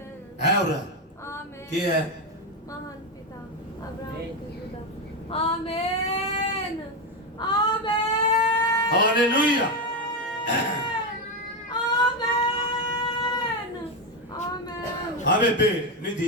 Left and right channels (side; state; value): both; normal; correlation 0.10